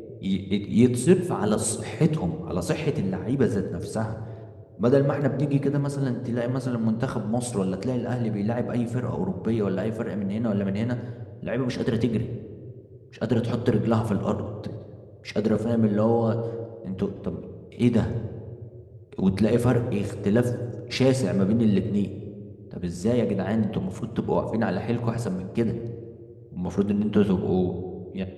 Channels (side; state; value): both; identical; correlation 1.00